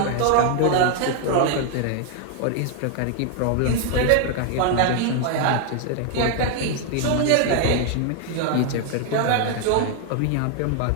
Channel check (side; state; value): both; different; correlation 0.00